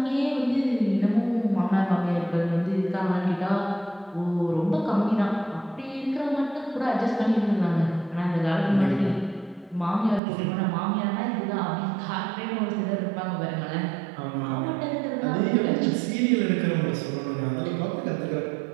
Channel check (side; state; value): left; drops out; at 10.2 s